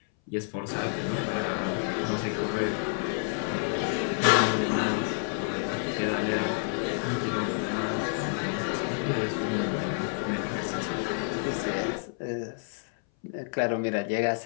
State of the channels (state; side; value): silent; right; 59 dB below the other